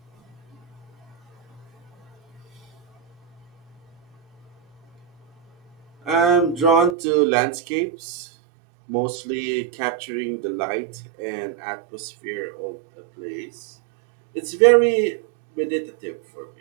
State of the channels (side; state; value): left; drops out; at 7.0 s